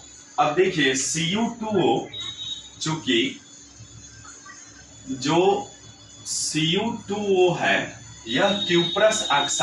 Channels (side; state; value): both; identical; correlation 1.00